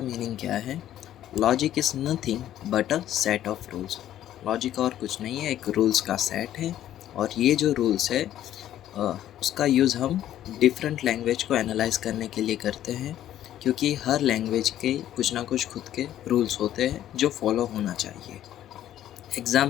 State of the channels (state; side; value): quieter; right; 12.1 dB